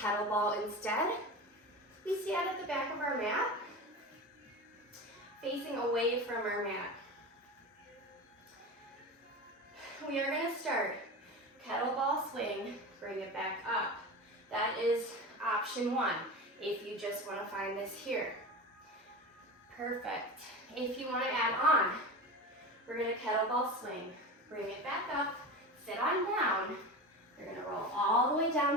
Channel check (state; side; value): normal; both; correlation 0.28